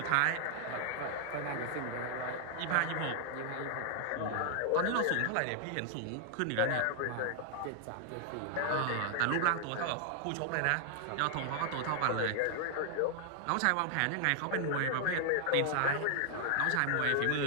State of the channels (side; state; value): both; different; correlation 0.00